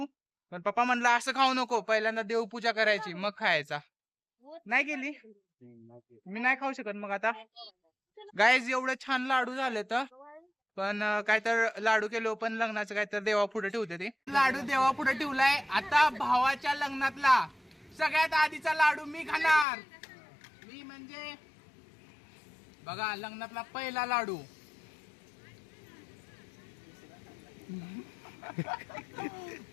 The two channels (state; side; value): drops out; right; at 19.7 s